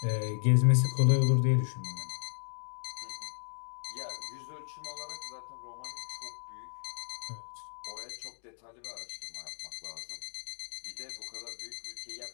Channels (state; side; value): silent; right; digital silence